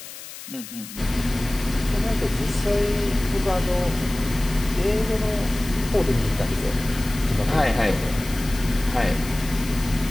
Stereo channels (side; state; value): left; noise; hiss, 13 dB below the sound